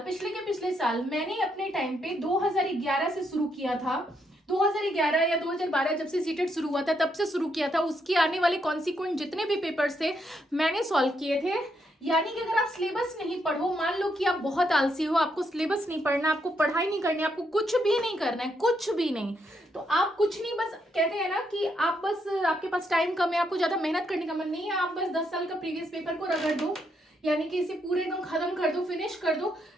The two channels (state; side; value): normal; both; correlation 0.77